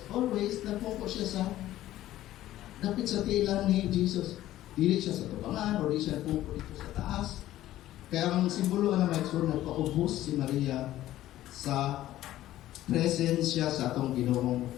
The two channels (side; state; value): right; quieter; 14.2 dB